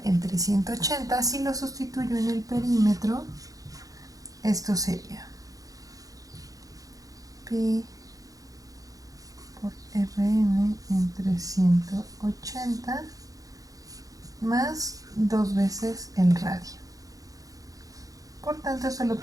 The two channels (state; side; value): late; left; 0.17 ms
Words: entre 180, si lo sustituyo en el perímetro, esto sería pi por Rn entre 180 más 2 veces el radio. Por tanto, esto lo